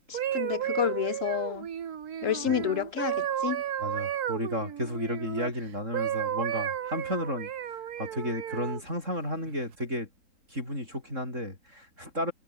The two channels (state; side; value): late; left; 3.8 ms